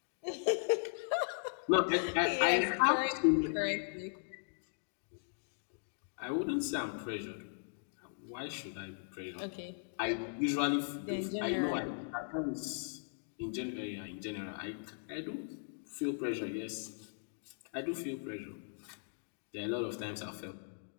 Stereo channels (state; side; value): silent; right; digital silence